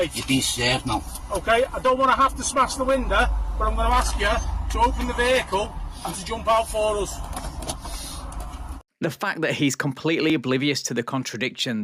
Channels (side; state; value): both; identical; correlation 1.00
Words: You've been served now. Okay, I don't want to have to smash the window, but I'm going to ask you to open the vehicle and to jump out for us. The fact that he's completely oblivious to the contradiction